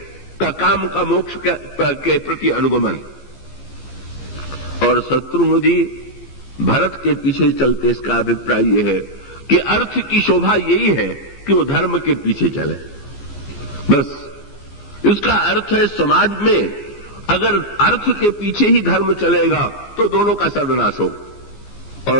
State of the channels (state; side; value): late; right; 15 ms